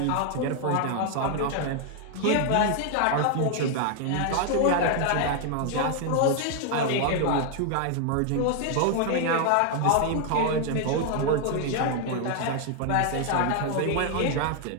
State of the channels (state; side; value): different; both; correlation 0.00